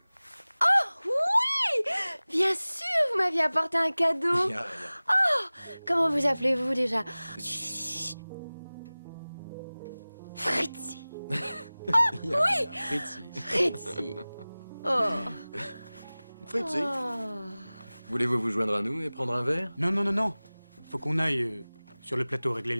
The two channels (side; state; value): both; inverted; correlation -0.99